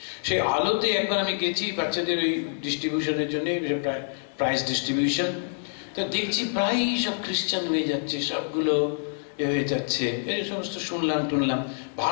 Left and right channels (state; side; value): silent; right; digital silence